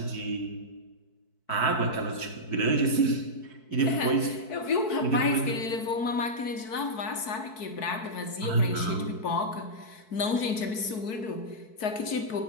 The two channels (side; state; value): right; late; 4.6 ms